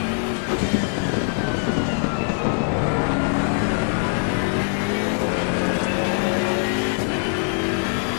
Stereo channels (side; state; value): right; silent; 60 dB below the other